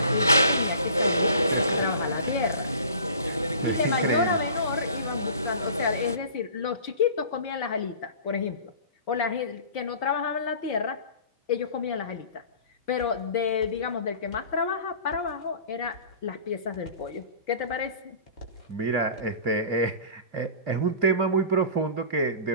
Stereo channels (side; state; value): both; inverted; correlation -0.43